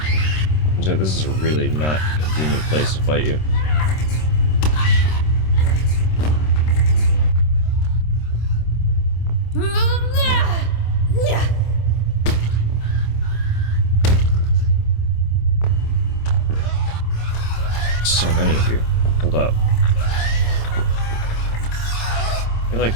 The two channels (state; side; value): late; right; 26 ms